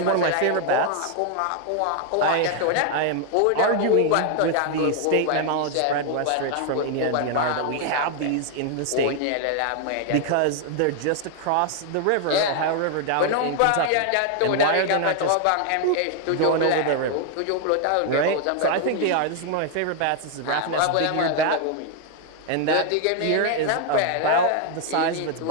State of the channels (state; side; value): different; both; correlation 0.00